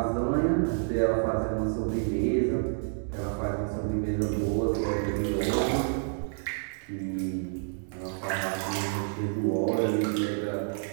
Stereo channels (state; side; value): silent; left; digital silence